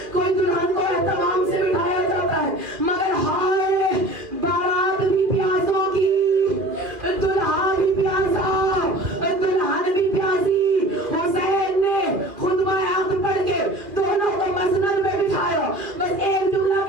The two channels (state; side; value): late; left; 2.4 ms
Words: کوئی دلہن کو اہتمام سے بٹھایا جاتا ہے، مگر ہائے بارات بھی پیاسوں کی، دلہا بھی پیاسا، دلہن بھی پیاسی۔ حسین نے خطبہ عقد پڑھ کے دونوں کو مسند میں بٹھایا، بس ایک جملہ